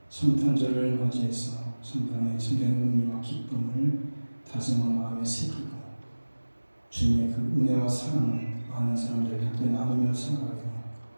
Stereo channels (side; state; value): both; inverted; correlation -1.00